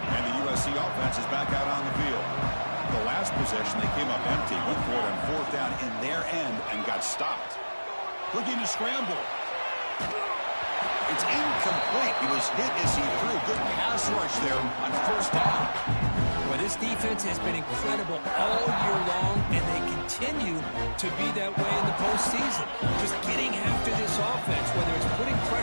And the USC offense is back out on the field. The last possession, they came up empty, went for it on 4th down in their end and got stopped. Looking to scramble. It's incomplete. He was hit as he threw. Good pass rush there on 1st down. Well, this defense has been incredible all year long, and they continue to be that way in the postseason. Just getting after this offense, whether it's putting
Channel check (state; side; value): inverted; both; correlation -1.00